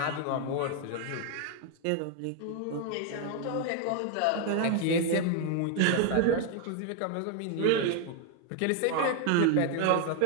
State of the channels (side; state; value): both; different; correlation 0.01